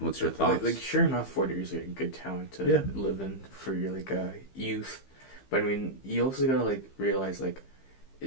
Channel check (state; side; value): late; right; 15 ms